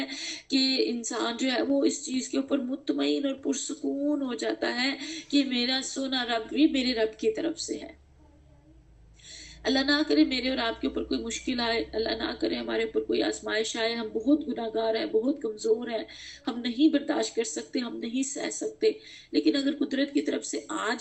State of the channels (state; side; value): identical; both; correlation 1.00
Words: کہ انسان جو ہے وہ اس چیز کے اوپر مطمئن اور پرسکون ہو جاتا ہے کہ میرا سونا رب بھی میرے رب کی طرف سے ہے۔ اللہ نہ کرے میرے اور آپ کے اوپر کوئی مشکل آئے، اللہ نہ کرے ہمارے اوپر کوئی آزمائش آئے، ہم بہت گناہ گار ہیں، بہت کمزور ہیں، ہم نہیں برداشت کر سکتے، ہم نہیں سہ سکتے، لیکن اگر قدرت کی طرف سے آ